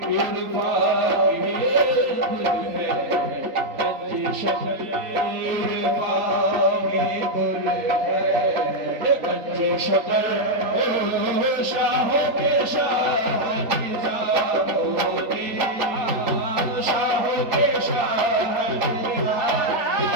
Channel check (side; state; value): left; late; 3.4 ms